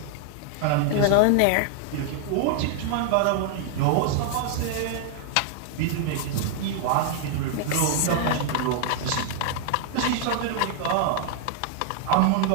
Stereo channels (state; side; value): different; both; correlation 0.00